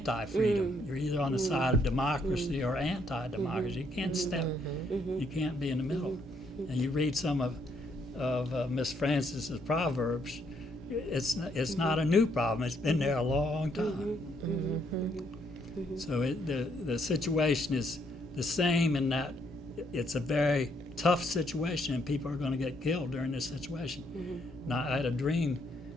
You're either on the side of democracy or anti-democracy. You can't you can't be in the middle. And you read some of Miss Francis's Proverbs, it's not a new problem. It's been there a long time. So the situation is the same in that it's a very tough situation, and people are going to get killed during this situation. Now, I had a dream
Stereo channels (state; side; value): normal; both; correlation 0.72